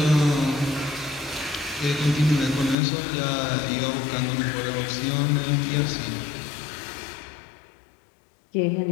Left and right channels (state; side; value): drops out; right; at 2.8 s